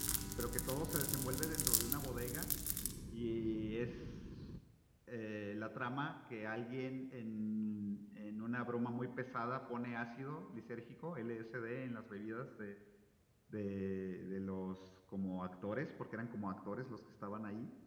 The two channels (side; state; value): both; identical; correlation 1.00